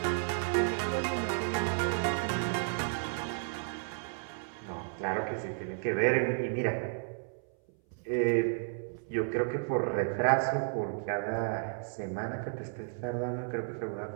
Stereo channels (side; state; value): left; silent; 56 dB below the other